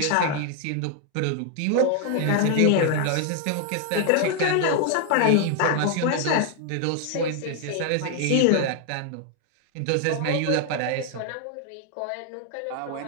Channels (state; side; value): different; both; correlation 0.00